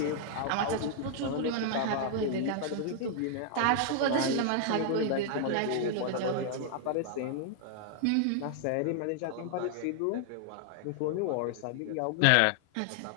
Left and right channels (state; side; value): different; both; correlation 0.00